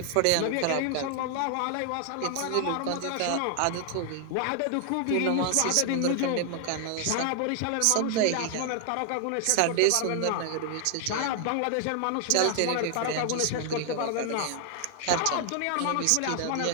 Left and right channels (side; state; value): both; different; correlation 0.00